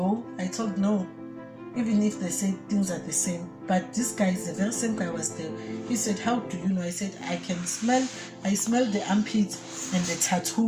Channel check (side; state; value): both; identical; correlation 1.00